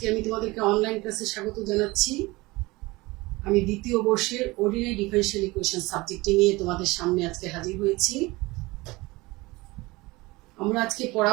আমি তোমাদেরকে অনলাইন ক্লাসে স্বাগত জানাচ্ছি। আমি দ্বিতীয় বর্ষের অর্ডিনারি ডিফারেনশিয়াল ইকুয়েশন সাবজেক্টটি নিয়ে তোমাদের সামনে আজকে হাজির হয়েছি। আমরা আজকে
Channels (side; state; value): left; quieter; 21.9 dB